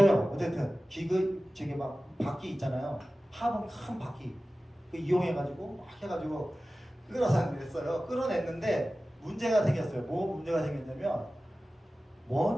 어쨌든 저게 막 바퀴 있잖아요. 화분 큰 바퀴 그 이용해가지고 막 해가지고 끌어서 냈어요. 끌어냈는데 문제가 생겼어요. 뭐 문제가 생겼냐면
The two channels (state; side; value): normal; both; correlation 0.96